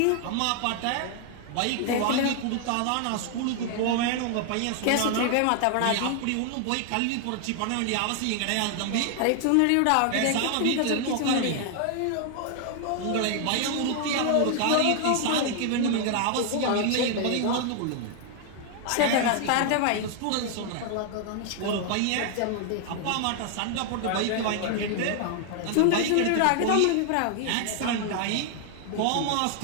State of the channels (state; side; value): different; both; correlation 0.00